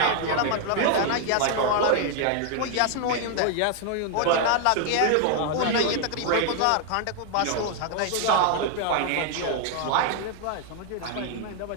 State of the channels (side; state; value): both; different; correlation 0.00